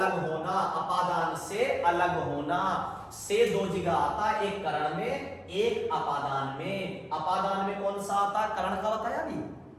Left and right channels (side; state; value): both; identical; correlation 1.00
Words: होना, अपादान से अलग होना, से दो जगह आता है, एक करण में एक अपादान में। अपादान में कौन सा आता है? करण का बताया अभी